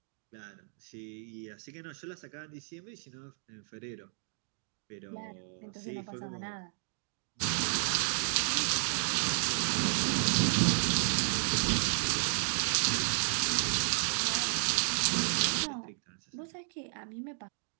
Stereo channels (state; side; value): silent; left; 56 dB below the other